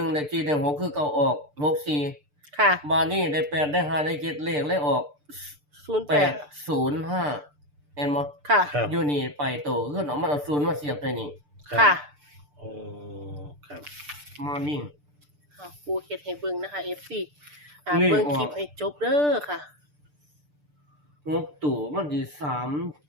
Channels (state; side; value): late; left; 6.8 ms